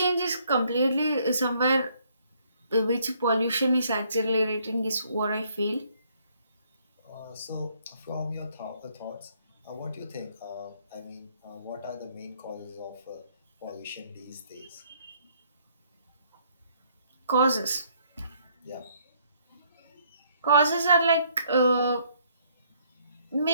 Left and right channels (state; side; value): inverted; both; correlation -0.67